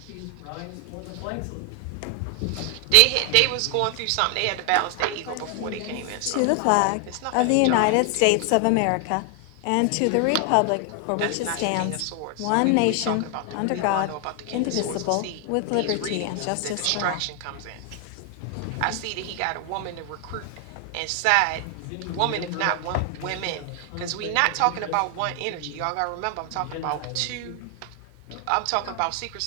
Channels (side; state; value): both; different; correlation 0.00